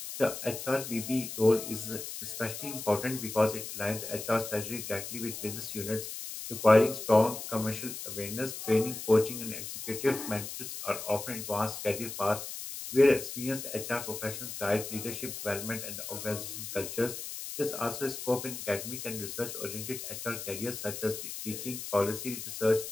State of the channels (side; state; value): left; noise; hiss, 8 dB below the sound